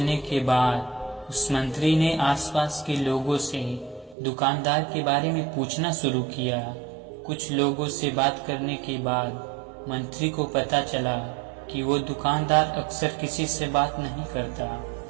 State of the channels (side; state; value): left; drops out; at 4.2 s